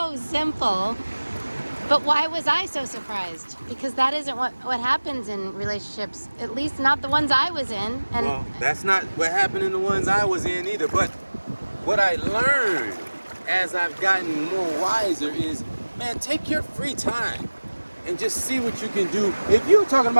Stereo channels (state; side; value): inverted; both; correlation -1.00